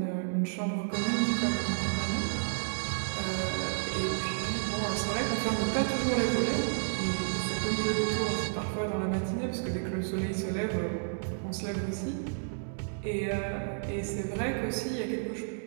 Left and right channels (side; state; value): left; silent; digital silence